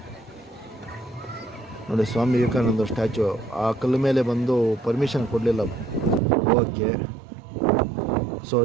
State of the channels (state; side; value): drops out; left; at 6.2 s